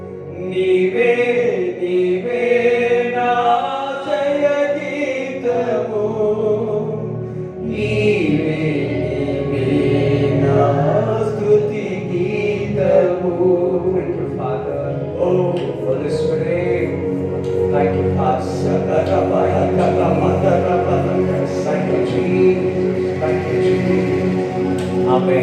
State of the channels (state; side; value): identical; both; correlation 1.00